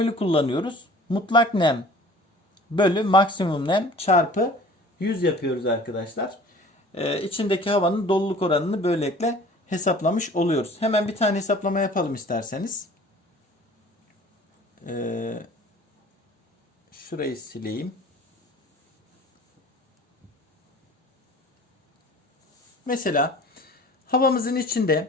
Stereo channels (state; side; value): normal; both; correlation 0.47